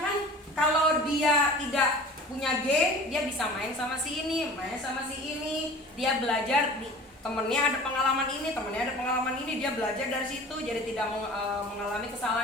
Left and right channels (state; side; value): normal; both; correlation 0.41